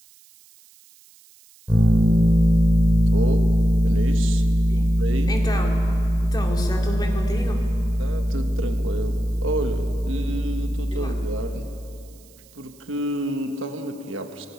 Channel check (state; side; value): noise; right; hiss, 28 dB below the sound